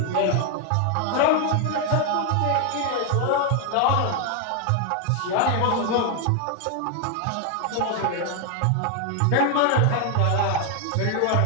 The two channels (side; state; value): both; different; correlation 0.01